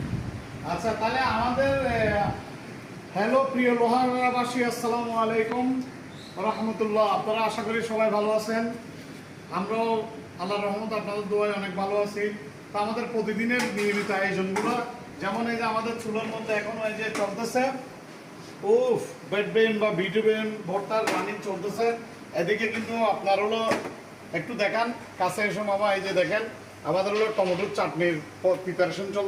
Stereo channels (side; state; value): both; identical; correlation 1.00